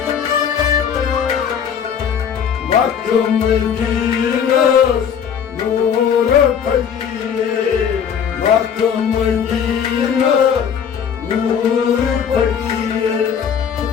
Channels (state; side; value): quieter; right; 7.7 dB